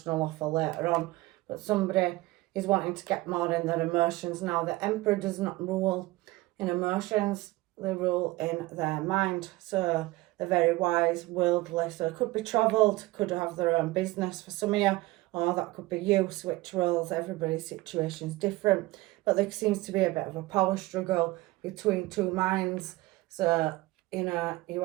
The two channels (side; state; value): left; quieter; 19.9 dB